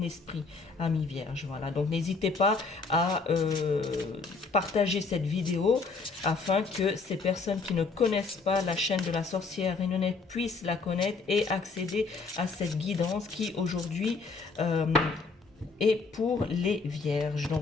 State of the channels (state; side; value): quieter; right; 4.3 dB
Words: esprit, ami vierge. Voilà, donc n'hésitez pas à partager cette vidéo afin que ces personnes qui ne connaissent pas la chaîne de la sorcière Renonette puissent la connaître et accéder à cette guidance qui aujourd'hui et pour les vierges,